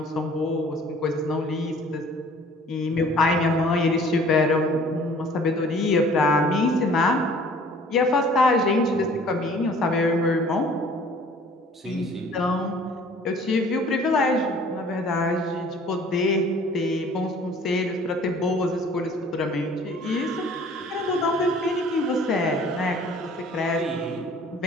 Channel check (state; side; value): normal; both; correlation 0.52